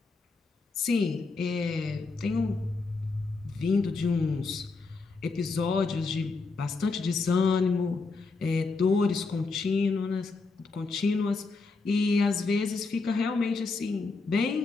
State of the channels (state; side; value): quieter; right; 4.0 dB